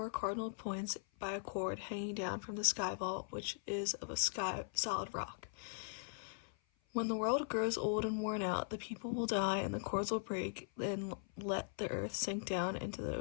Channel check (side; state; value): right; silent; 51 dB below the other